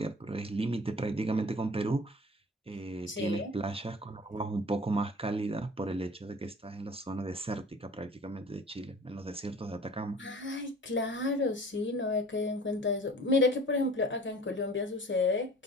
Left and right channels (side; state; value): both; normal; correlation 0.45